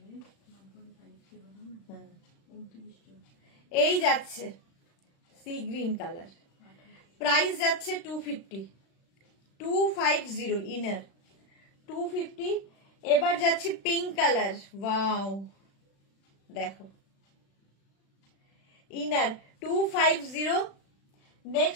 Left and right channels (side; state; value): right; late; 36 ms